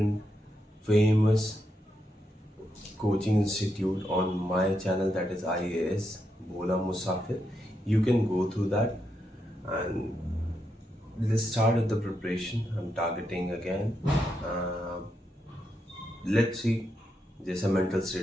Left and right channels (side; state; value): both; normal; correlation 0.83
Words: famous coaching institute on my channel, that is IAS Bola Musafir. You can go through that and let's start with the preparation. I'm targeting again. Let's see जैसा mental